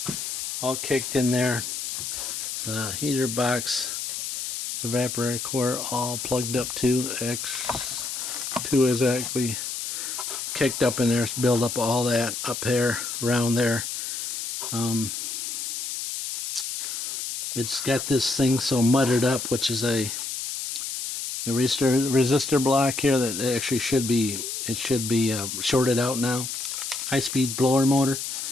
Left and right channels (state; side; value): noise; left; hiss, 4 dB below the sound